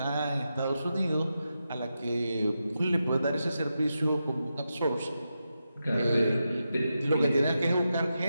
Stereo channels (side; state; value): both; inverted; correlation -0.88